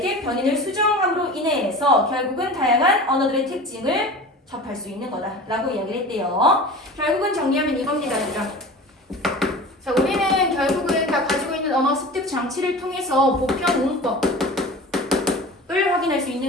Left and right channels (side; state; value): both; normal; correlation 0.36